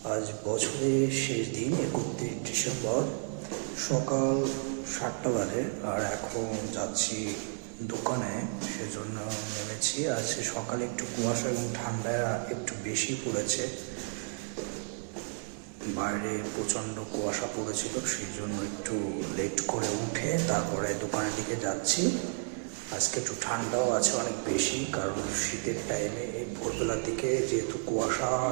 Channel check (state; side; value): silent; left; 56 dB below the other